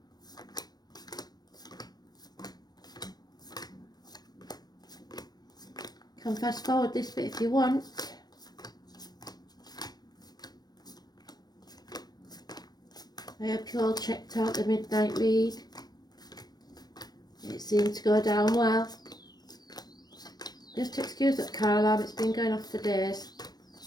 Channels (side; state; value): right; late; 0.19 ms